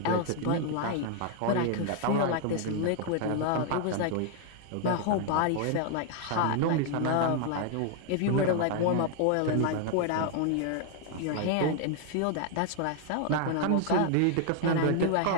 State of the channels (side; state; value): both; different; correlation 0.00